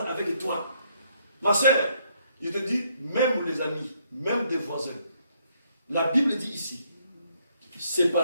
avec toi. Ma sœur, je te dis, même les amis, même des voisins. La Bible dit ici,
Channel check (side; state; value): both; inverted; correlation -0.71